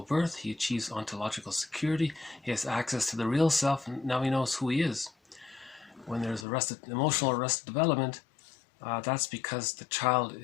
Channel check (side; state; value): right; drops out; at 6.5 s